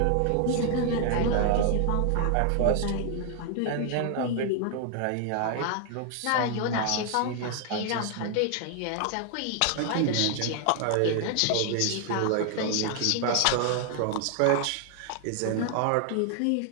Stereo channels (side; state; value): both; different; correlation 0.00